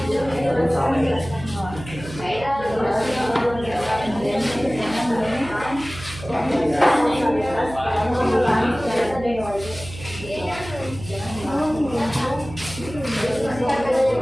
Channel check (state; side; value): noise; right; hum, 14 dB below the sound